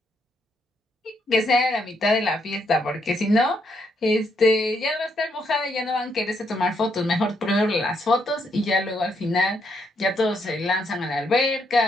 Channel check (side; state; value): both; normal; correlation 0.76